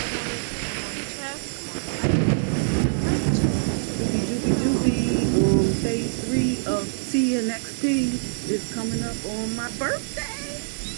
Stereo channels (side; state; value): left; silent; digital silence